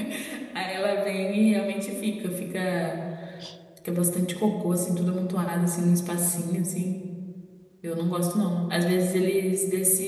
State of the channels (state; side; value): identical; both; correlation 1.00